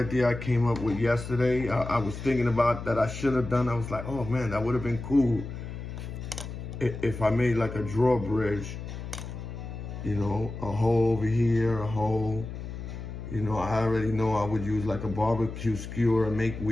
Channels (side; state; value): left; noise; hum, 9 dB below the sound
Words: I came up with yesterday. I was thinking about that I should have done. I was like, oh man, that would have been cool if I made like a drawbridge. You know, a hole over here, a hole. You know, I already know I would use like a barbecue skewer and make